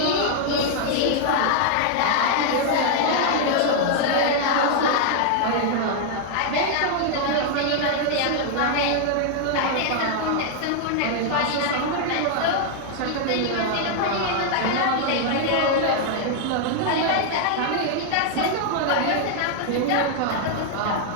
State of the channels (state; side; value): different; both; correlation 0.00